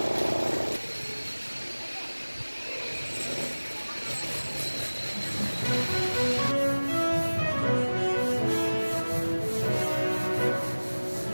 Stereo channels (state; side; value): inverted; both; correlation -1.00